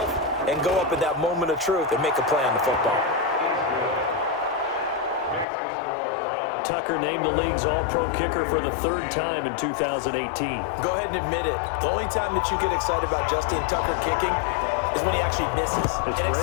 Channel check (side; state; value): right; drops out; at 5.5 s